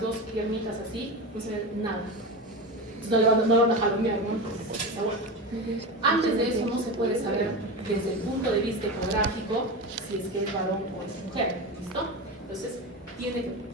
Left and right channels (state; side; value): normal; both; correlation 0.23